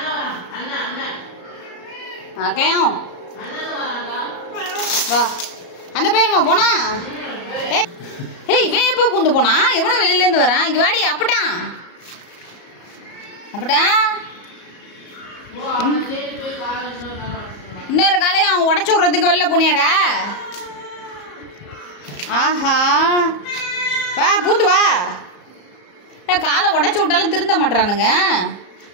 அக்கையும் வா. அந்த பையலமா போனா? ஏய் இவன் எப்போ பூந்து போனா? எவனும் வெளியிலேருந்து வரான். இங்கே வாடி. அப்பட்டான் இன்னொரு காலையும் அவன் உடச்சி விட்றதுக்கு வெளில போனியாடா? ஆஹா வா பூந்து வா. காலை உடச்சி விட்டாலும் திருந்த மாட்டானுங்க.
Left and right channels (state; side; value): late; right; 34 ms